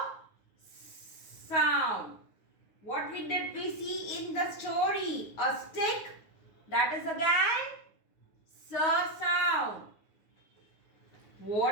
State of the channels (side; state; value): right; late; 9.5 ms